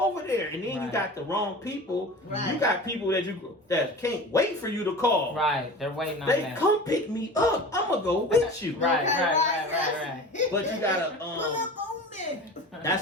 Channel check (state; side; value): normal; both; correlation 0.36